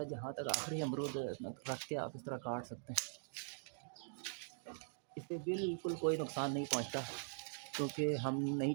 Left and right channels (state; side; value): silent; left; digital silence